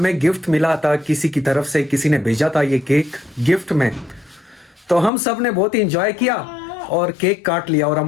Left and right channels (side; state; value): right; drops out; at 5.1 s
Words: गिफ्ट मिला था किसी की तरफ से, किसी ने भेजा था ये केक गिफ्ट में। तो हम सब ने बहुत ही एंजॉय किया और केक काट लिया। और